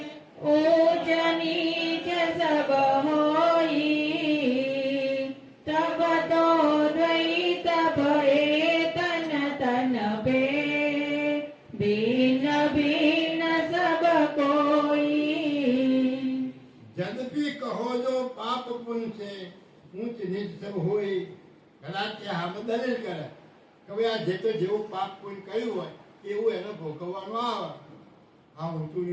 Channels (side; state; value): both; identical; correlation 1.00